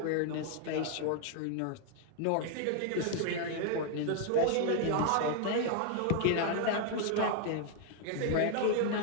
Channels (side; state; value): both; different; correlation 0.00